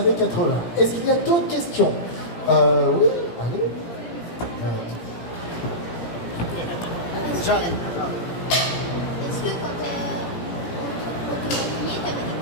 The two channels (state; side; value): late; right; 17 ms